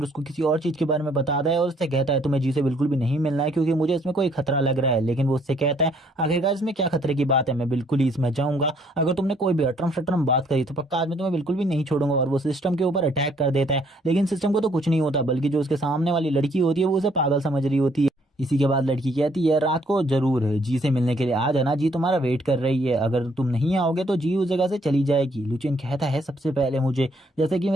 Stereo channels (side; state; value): both; normal; correlation 0.65